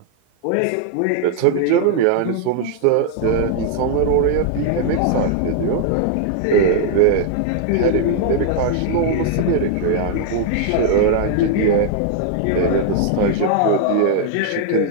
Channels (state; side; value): different; both; correlation 0.00